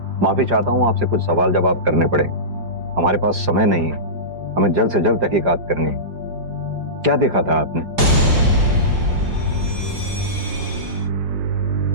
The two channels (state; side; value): late; left; 4.9 ms